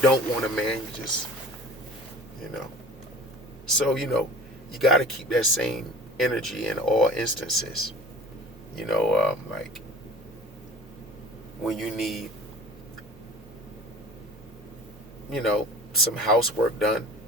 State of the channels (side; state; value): both; normal; correlation 0.43